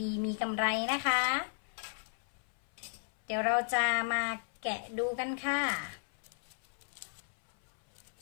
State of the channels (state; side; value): silent; right; 55 dB below the other